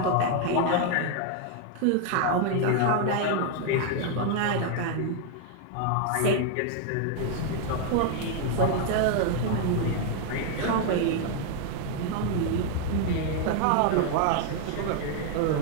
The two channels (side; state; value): both; different; correlation 0.00